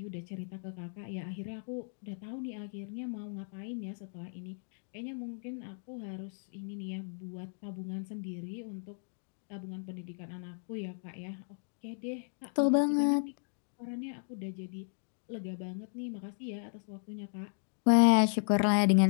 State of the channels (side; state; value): right; silent; digital silence